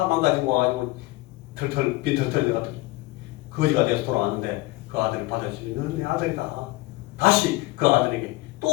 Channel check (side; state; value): right; quieter; 21.1 dB